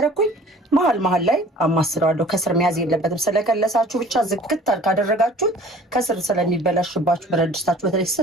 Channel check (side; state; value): both; normal; correlation 0.48